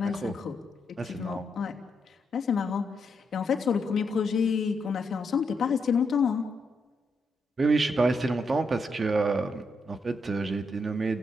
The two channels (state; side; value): normal; both; correlation 0.80